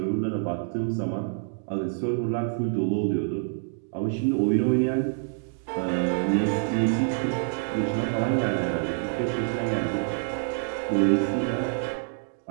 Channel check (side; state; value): left; silent; digital silence